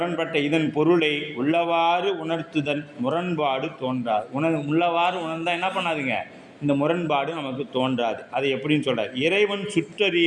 இதன் பொருளை உள்ளவாறு உணர்த்துதல் முரண்பாடு தோன்றாது. உள்ளவாறு உணர்ந்தால் என்ன பண்ணாதுங்க, இந்த முரண்பாடு நமக்கு தோன்றாது. அது எப்படின்னு சொல்கிறார், இறைவன்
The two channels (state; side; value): identical; both; correlation 1.00